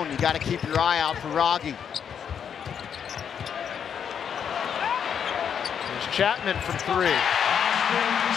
You got to keep your eye out for Wragge. There's Chapman from 3.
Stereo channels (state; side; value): quieter; right; 7.9 dB